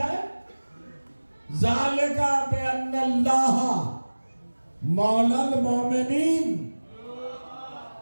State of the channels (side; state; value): both; inverted; correlation -1.00